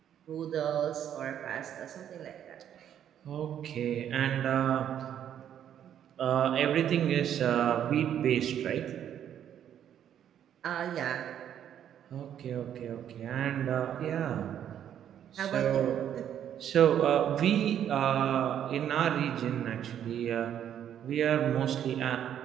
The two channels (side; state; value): left; quieter; 9.9 dB